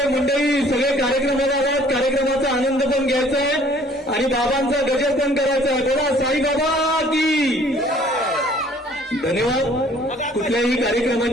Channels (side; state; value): both; normal; correlation 0.56